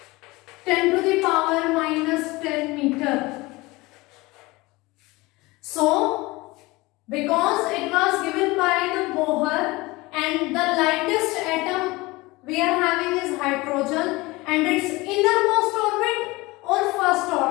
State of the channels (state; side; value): quieter; right; 22.0 dB